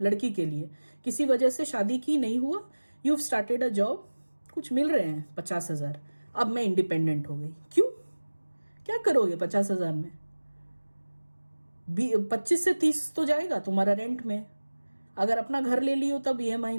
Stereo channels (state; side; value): inverted; both; correlation -1.00